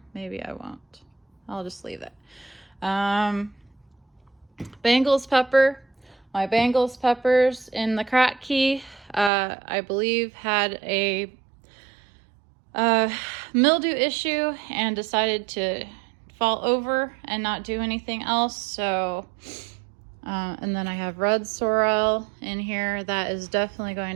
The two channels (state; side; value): drops out; left; at 9.3 s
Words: Maybe I won't. I'll just leave it. Bangles pepper. My Bangles peppers in the Kratky, I believe, had a mildew issue and decided to fall over and not do anything else. So, and then I have red sorrel in here that is definitely